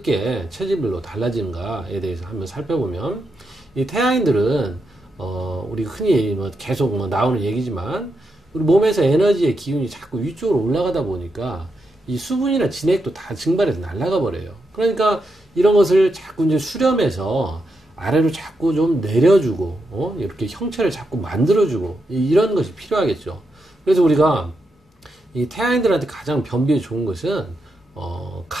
체질별로 달라지는가에 대해서 한번 살펴보면, 이 태양인들은 우리 흔히 계속 나오는 얘기지만 우리 몸에서 에너지의 기운이 자꾸 위쪽으로 올라가다 보니까 이 수분이나 진액도 다 증발해서 날아가 버려요. 그러니까 이런 것을 자꾸 이제 수렴해서 아래로 자꾸 좀 내려주고 이렇게 형체를 자꾸 만들어주고 이런 것이 필요하겠죠. 그래서 우리가 이 태양인들한테 가장 변비에 좋은 것은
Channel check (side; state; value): both; normal; correlation 0.84